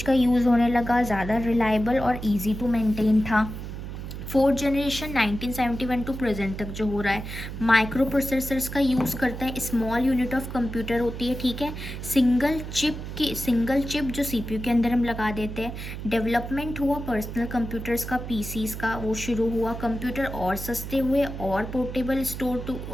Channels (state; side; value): noise; right; hum, 8 dB below the sound